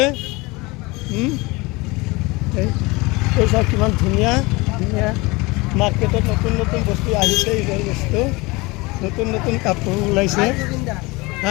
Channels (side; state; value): right; quieter; 24.1 dB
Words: এই চাওক কিমান ধুনীয়া ধুনীয়া মাৰ্কেটত নতুন নতুন বস্তু আহিছে। ঈদৰ বস্তু নতুন নতুন কাপোৰ ওলাইছে।